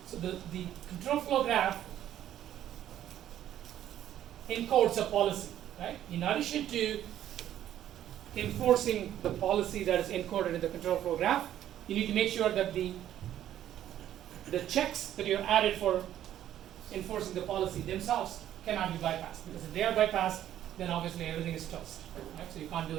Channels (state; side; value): quieter; left; 11.6 dB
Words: control flow graph encodes a policy, right? In addition to enforcing the policy that is encoded in the control flow graph, you need to make sure that the checks that you have added for enforcing the policy themselves cannot be bypassed, because if they are bypassed, then obviously everything is toast, right? So you can't do